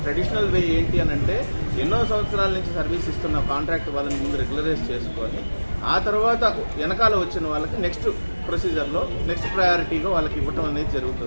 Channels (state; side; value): inverted; both; correlation -1.00